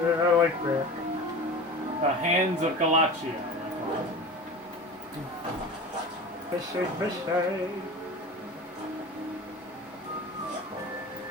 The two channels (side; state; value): both; normal; correlation 0.34